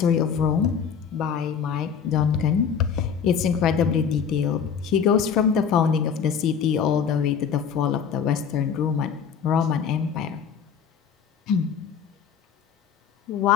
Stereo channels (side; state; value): right; quieter; 7.1 dB